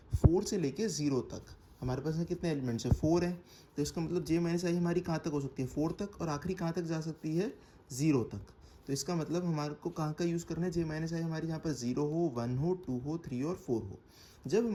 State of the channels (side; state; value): both; identical; correlation 1.00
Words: 4 से लेके 0 तक। हमारे पास कितने एलिमेंट्स है, 4 है, तो इसका मतलब J माइनस आई हमारी कहाँ तक हो सकती है, 4 तक, और आखिरी कहाँ तक जा सकती है, 0 तक। तो इसका मतलब हमारे को कहाँ का यूज़ करना है, J माइनस आई हमारी यहाँ पर 0 हो, 1 हो, 2 हो, 3 और 4 हो। जब